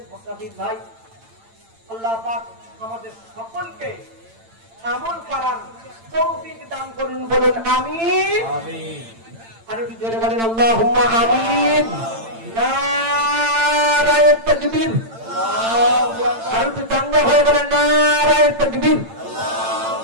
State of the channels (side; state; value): left; late; 8.9 ms